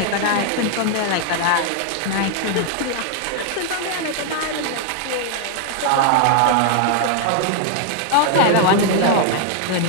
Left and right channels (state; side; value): different; both; correlation 0.00